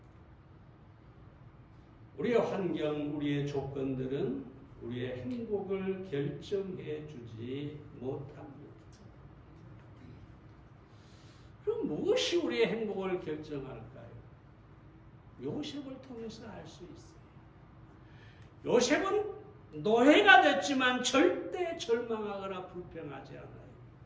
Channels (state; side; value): identical; both; correlation 1.00